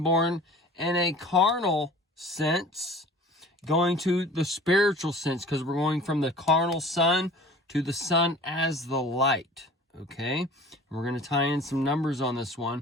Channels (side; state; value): both; normal; correlation 0.44